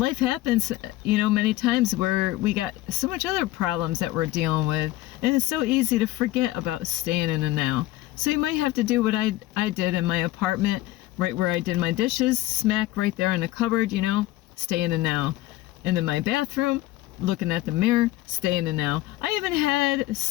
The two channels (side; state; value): right; quieter; 16.8 dB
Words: happens, many times where we got so much other problems that we're dealing with, and it's so easy to forget about staying in the now. So you might have to do what I did in my apartment, right where I did my dishes, smack right there in the cupboard, stay in the now. And then my bathroom, looking at the mirror, stay in the now. I even had